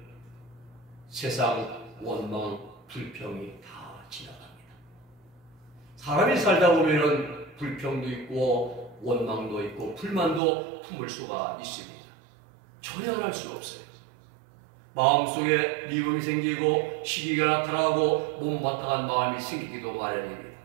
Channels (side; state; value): left; drops out; at 10.4 s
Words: 세상 원망 불평이 다 지나갑니다. 사람이 살다 보면은 불평도 있고 원망도 있고 불만도 품을 수가 있습니다. 전혀 할 수 없어요. 마음속에 미움이 생기고 시기가 나타나고 못마땅한 마음이 생기기도 마련입니다.